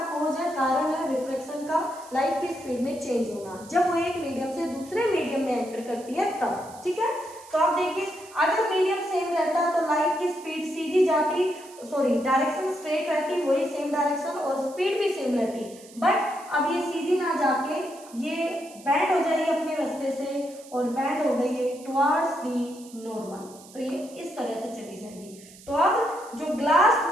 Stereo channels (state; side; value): noise; right; hiss, 21 dB below the sound